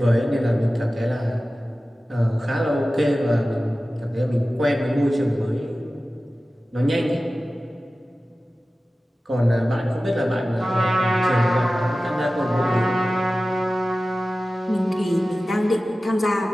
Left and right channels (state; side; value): normal; both; correlation 0.96